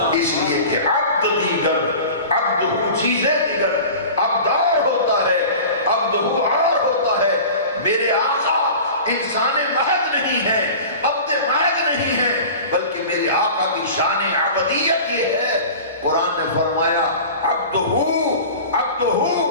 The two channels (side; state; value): both; inverted; correlation -0.37